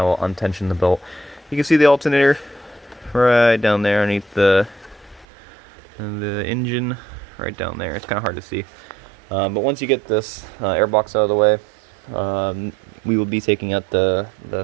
will untension the belt. You can see the alternator right down there underneath the engine, right down there. It's kind of hard to see, but once you get this airbox out of the way, we will be taking out the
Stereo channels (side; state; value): left; drops out; at 5.2 s